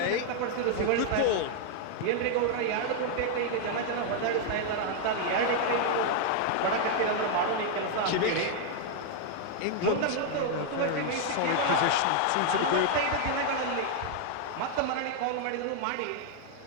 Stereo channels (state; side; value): different; both; correlation 0.00